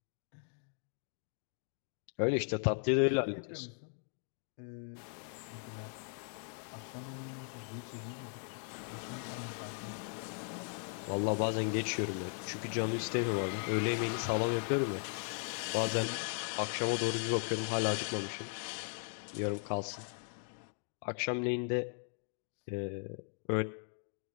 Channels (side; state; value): right; silent; 53 dB below the other